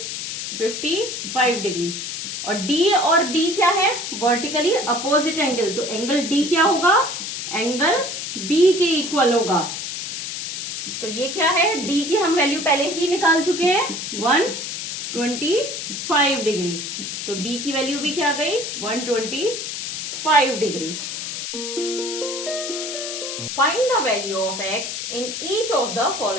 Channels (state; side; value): noise; left; hiss, 5 dB below the sound